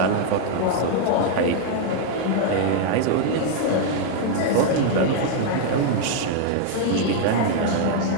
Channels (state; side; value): different; both; correlation 0.00